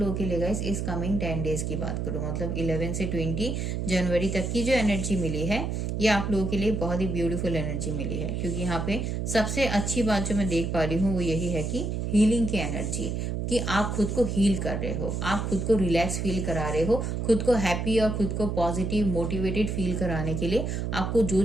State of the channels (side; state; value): right; noise; hum, 2 dB below the sound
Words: के लिए गाइस इस कमिंग 10 डेज की बात करूं, मतलब 11 से 20 जनवरी तक की जो एनर्जी मिली है, ये आप लोगों के लिए बहुत ही ब्यूटीफुल एनर्जी मिली है। क्योंकि यहाँ पे सबसे अच्छी बात जो मैं देख पा रही हूँ वो यही है कि हीलिंग की एनर्जी, कि आप खुद को हील कर रहे हो, आप खुद को रिलैक्स फील करा रहे हो, खुद को हैप्पी और खुद को पॉजिटिव मोटिवेटेड फील कराने के लिए आपको जो